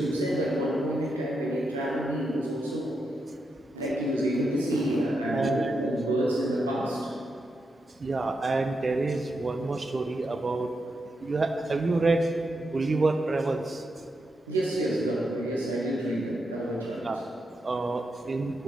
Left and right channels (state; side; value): normal; both; correlation 0.84